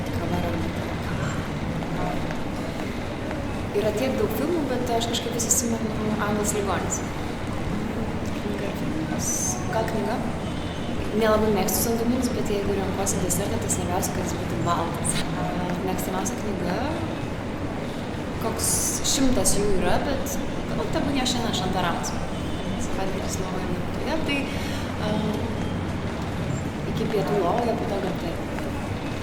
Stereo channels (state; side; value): identical; both; correlation 1.00